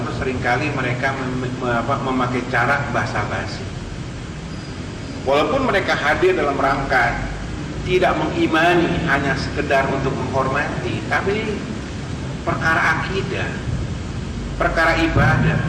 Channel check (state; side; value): identical; both; correlation 1.00